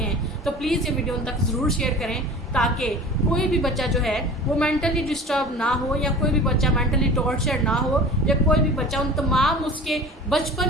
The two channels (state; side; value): normal; both; correlation 0.39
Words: तो प्लीज़ ये वीडियो उन तक ज़रूर शेयर करें ताकि कोई भी बच्चा जो है वो मेंटली डिस्टर्ब ना हो, या कोई भी बच्चा मेंटली टॉर्चर ना हो, या कोई भी बच्चा उन तमाम उसके